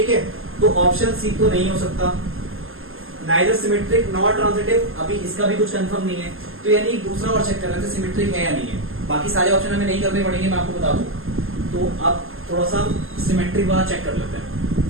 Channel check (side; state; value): left; late; 0.60 ms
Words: है। तो ऑप्शन सी तो नहीं हो सकता। नाइदर सिमेट्रिक नॉट ट्रांजिटिव, अभी इसका भी कुछ कंफर्म नहीं है। तो यानी दूसरा और चेक कर लेते हैं सिमेट्रिक है या नहीं है। बाकी सारे ऑप्शन हमें नहीं करने पड़ेंगे, मैं आपको बता दूं। तो अब थोड़ा सा सिमेट्रिक वाला चेक कर लेते हैं।